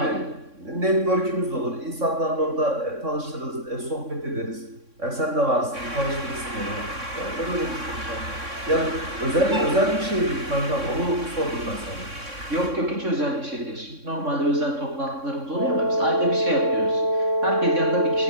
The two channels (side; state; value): left; late; 3.6 ms